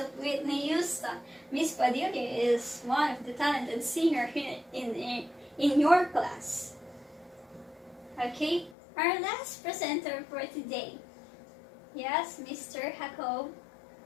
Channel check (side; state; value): right; drops out; at 8.8 s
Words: Whitney Houston. Miss Padilla is one of the talented singers in your class. Okay, our last presenter for today. Yes, Mr. Jacob.